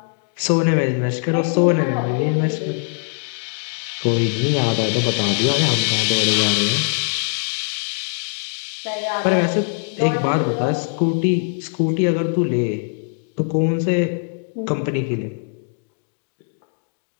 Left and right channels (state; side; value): silent; right; 65 dB below the other